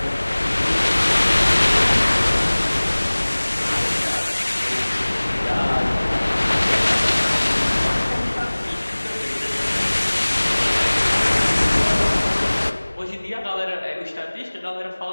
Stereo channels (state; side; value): inverted; both; correlation -1.00